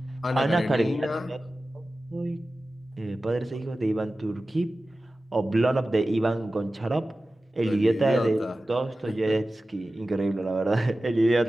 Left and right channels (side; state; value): both; normal; correlation 0.95